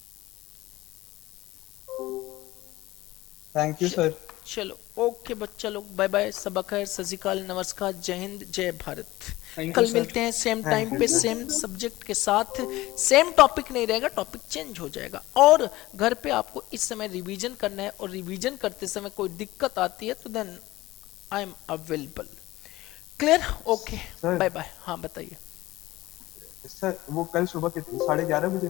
Thank you sir. चलो ओके बच्चा लोग, बाय बाय, सबक है, सत श्री अकाल, नमस्कार, जय हिंद, जय भारत। Thank you, कल sir. मिलते हैं सेम Thank टाइम you, पे, sir. सेम सब्जेक्ट के साथ। सेम टॉपिक नहीं रहेगा, टॉपिक चेंज हो जाएगा। और घर पे आपको इस समय रिवीजन करना है, और रिवीजन करते समय कोई दिक्कत आती है तो then I am available. Clear? Okay, Sir. Bye bye. हाँ बताइए। सर वो कल सुबह कितनी 11:30 बजे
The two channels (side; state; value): right; quieter; 18.0 dB